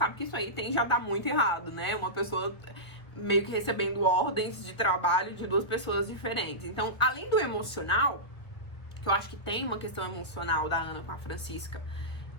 que isso aí tende a dar muito errado, né? Uma pessoa meio que recebendo ordens de trabalho de duas pessoas diferentes. Então, além do emocional, que eu acho que tem uma questão emocional da Ana com a Francisca,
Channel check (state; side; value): late; right; 1.7 ms